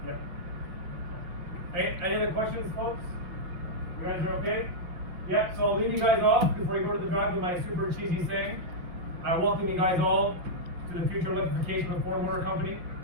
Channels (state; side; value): late; left; 5.7 ms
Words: Yeah. Any other questions, folks? You guys are okay? Yeah. So I'll leave you guys off before you go to the drive with my super cheesy saying. I welcome you guys all to the future electrification of Ford Motor Company,